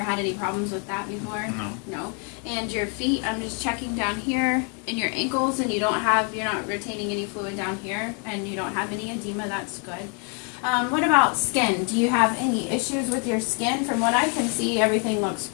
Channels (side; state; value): right; quieter; 38.1 dB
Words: had any problems with that before? No. No. And your feet, I'm just checking down here in your ankles, and you're not retaining any fluid down here, and you don't have any edema. That's good. What about skin? Do you have any issues with your skin? From what I can see, everything looks